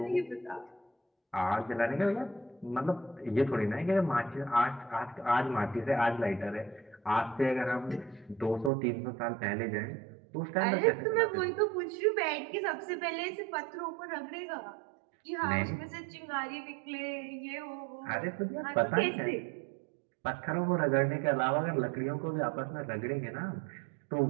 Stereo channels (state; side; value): drops out; left; at 8.7 s